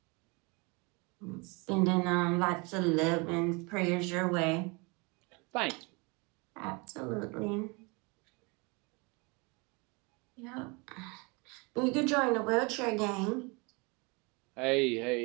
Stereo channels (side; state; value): left; quieter; 28.8 dB